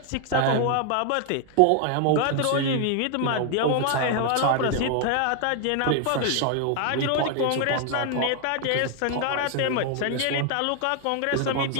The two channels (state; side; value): different; both; correlation 0.00